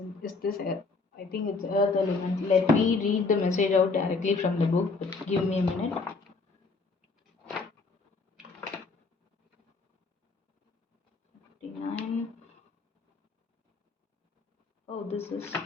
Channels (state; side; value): quieter; right; 4.0 dB